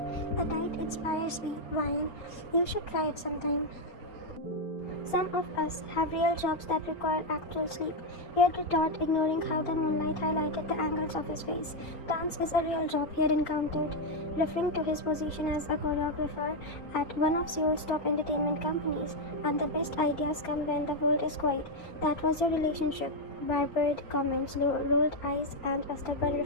The night inspires me. Wine. You should try it sometime. Some of us have real jobs that require actual sleep. He had retort, ignoring how the moonlight highlighted the angles of his face. Dance is a real job he had encountered, referring to his position as a choreographer at one of Seoul's top entertainment companies. And the best ideas come when the world is quiet. That was your relationship. Barbered comments, rolled eyes, and a stubborn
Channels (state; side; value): late; right; 4.3 ms